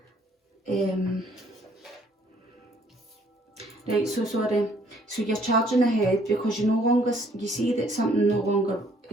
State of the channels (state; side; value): normal; both; correlation 0.63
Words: Right, so sorry. So you're charging ahead because you no longer, you see that something no longer